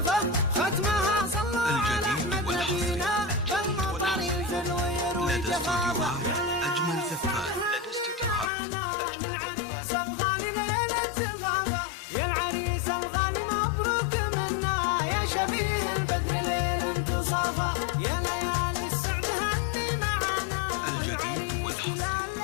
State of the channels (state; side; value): drops out; right; at 8.5 s